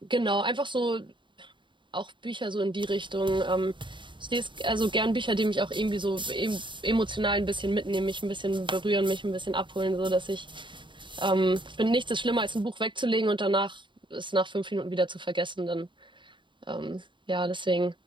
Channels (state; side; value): late; left; 0.23 ms